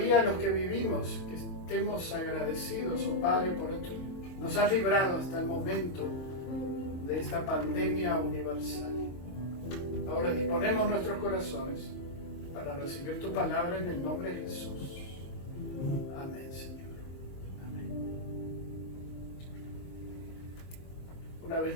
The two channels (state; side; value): late; right; 23 ms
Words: los que vivimos, que estemos agradecidos, oh Padre, por esto. Nos has librado hasta el momento de esta pandemia universal. Ahora disponemos nuestros corazones para recibir tu palabra en el nombre de Jesús. Amén, Señor. Amén. Una